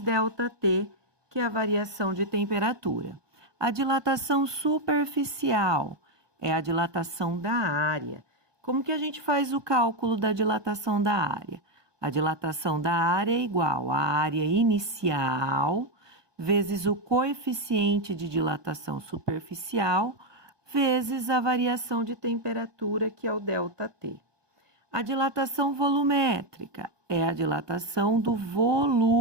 que é a variação de temperatura. A dilatação superficial é a dilatação da área. Como que a gente faz o cálculo da dilatação da área? A dilatação da área é igual à área inicial vezes o coeficiente de dilatação superficial vezes a variação de temperatura, que é o ΔT. A dilatação volumétrica é a dilatação do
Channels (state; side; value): late; left; 1.2 ms